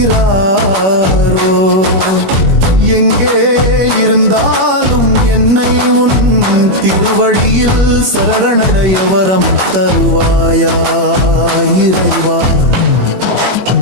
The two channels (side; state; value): left; late; 21 ms